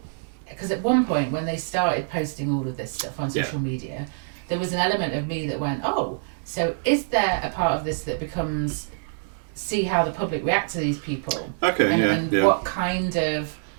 because at one point when they started posting all of this stuff on social media, there was an element of me that went, oh, so is there a part of this that becomes see how the public react to these people? Okay, And yeah. what kind of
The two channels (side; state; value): left; silent; 62 dB below the other